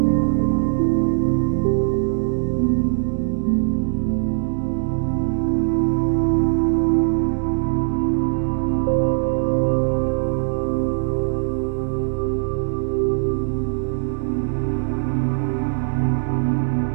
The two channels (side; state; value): left; silent; digital silence